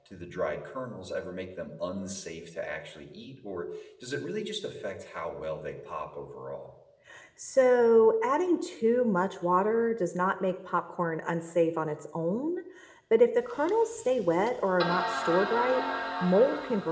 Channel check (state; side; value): identical; both; correlation 1.00